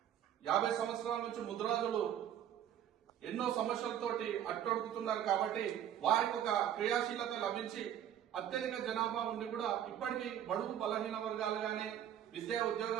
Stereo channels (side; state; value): left; quieter; 10.4 dB